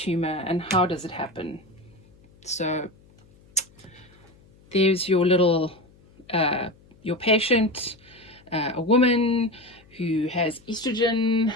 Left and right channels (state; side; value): noise; left; hum, 28 dB below the sound